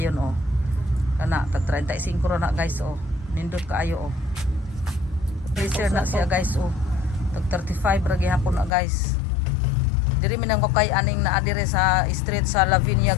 oh. Kana tag 35 ra na guys oh. Nindot kaayo oh. Pleasure na siya guys oh. Tag 35 ra gihapon na guys. Diri minang kay aning naa dire sa street sa Lavinia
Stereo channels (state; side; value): drops out; right; at 8.7 s